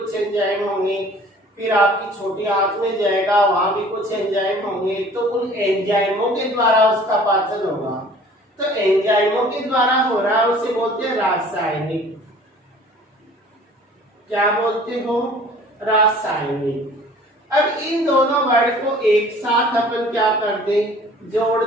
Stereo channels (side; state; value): both; normal; correlation 0.50